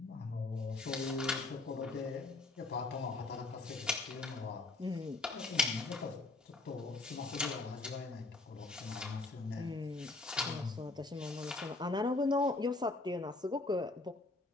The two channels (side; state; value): right; quieter; 3.2 dB